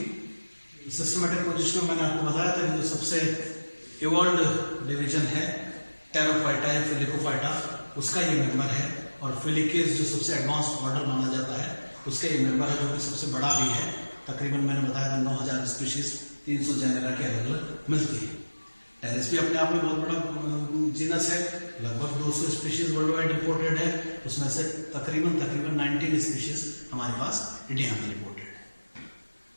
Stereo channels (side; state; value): both; inverted; correlation -1.00